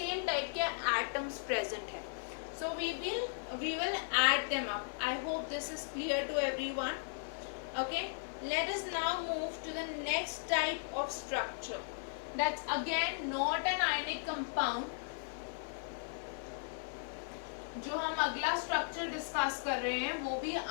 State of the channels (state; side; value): silent; right; 53 dB below the other